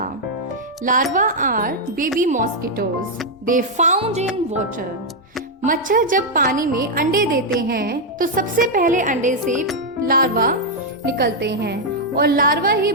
Larva are baby mosquitoes. They found in water. मच्छर जब पानी में अंडे देते हैं तो सबसे पहले अंडे से लार्वा निकलते हैं और लार्वा ही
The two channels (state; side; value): normal; both; correlation -0.01